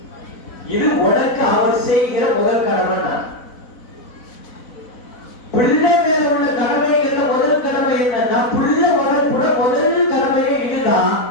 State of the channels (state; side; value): late; right; 4.0 ms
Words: இது உனக்கு அவர் செய்கிற முதல் கடமை. பிள்ளை மேல உள்ள கடமைகள்ல முதல் கடமை என்னன்னா, பிள்ளை வளர்ப்புட முதல் கடமையே இதுதான்.